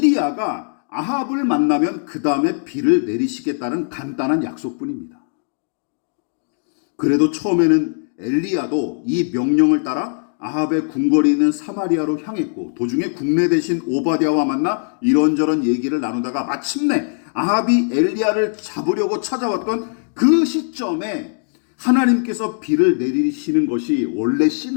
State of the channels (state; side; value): silent; right; digital silence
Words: 아합을 만나면 그 다음에 비를 내리시겠다는 간단한 약속뿐입니다. 그래도 처음에는 엘리야도 이 명령을 따라 아합의 궁궐이 있는 사마리아로 향했고 도중에 국내 대신 오바댜와 만나 이런저런 얘기를 나누다가 마침내 아합이 엘리야를 잡으려고 찾아왔던 그 시점에 하나님께서 비를 내리시는 것이 원래